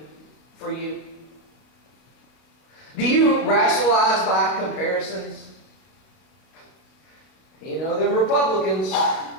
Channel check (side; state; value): right; late; 31 ms